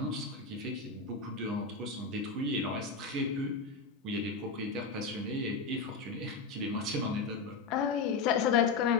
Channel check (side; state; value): right; quieter; 4.5 dB